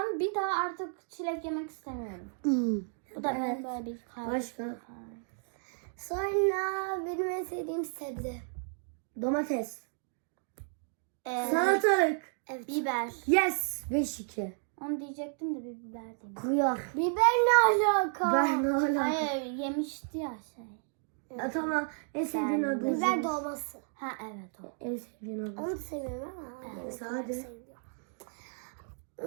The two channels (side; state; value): left; silent; 56 dB below the other